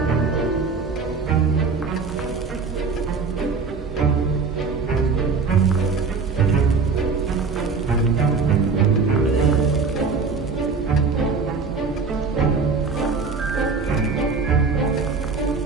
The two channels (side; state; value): left; quieter; 4.7 dB